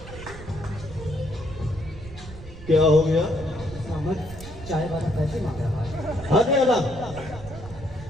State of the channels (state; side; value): noise; right; rumble, 14 dB below the sound